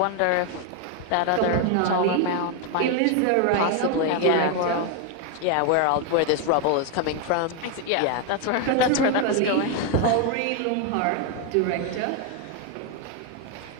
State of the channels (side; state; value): both; different; correlation 0.01